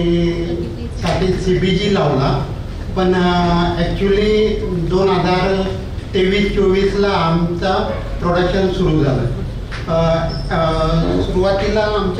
CBG लावला, पण ॲक्च्युली 2023-24 आमचा प्रोडक्शन सुरू झालं. सुरुवातीला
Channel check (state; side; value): identical; both; correlation 1.00